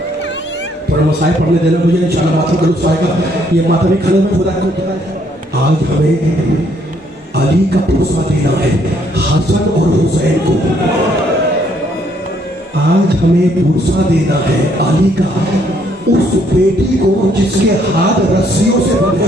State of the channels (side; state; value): both; normal; correlation 0.68